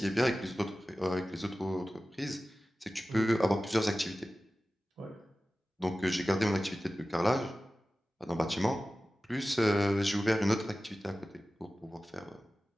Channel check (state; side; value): normal; both; correlation 0.96